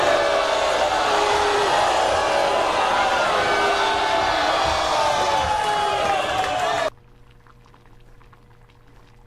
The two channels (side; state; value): both; identical; correlation 1.00